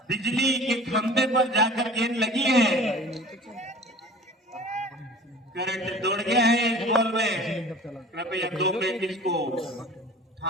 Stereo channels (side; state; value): both; normal; correlation 0.43